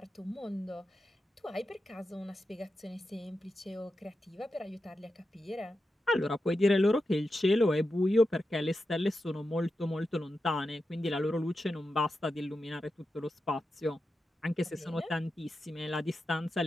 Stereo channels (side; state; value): both; normal; correlation 0.89